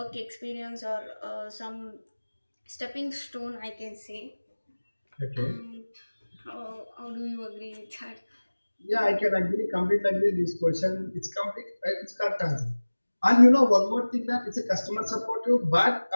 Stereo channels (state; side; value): inverted; both; correlation -1.00